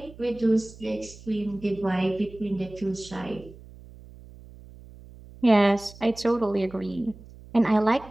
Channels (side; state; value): right; noise; hum, 20 dB below the sound